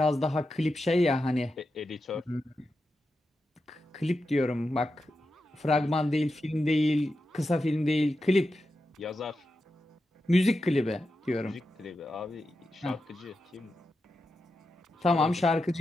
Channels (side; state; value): both; normal; correlation 0.89